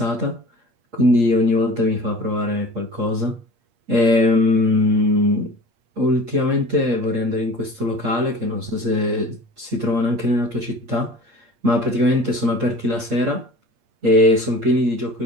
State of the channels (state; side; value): late; left; 8.6 ms